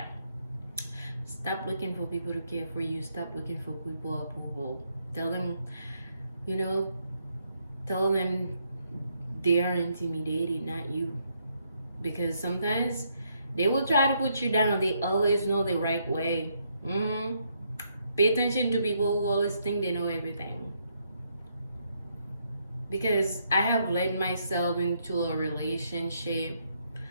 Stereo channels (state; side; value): inverted; both; correlation -0.75